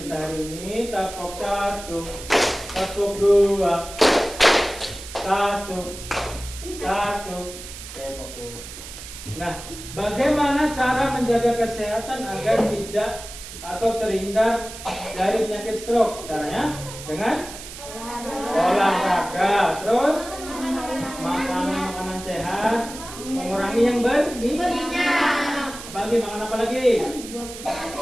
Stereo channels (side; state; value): right; noise; hiss, 12 dB below the sound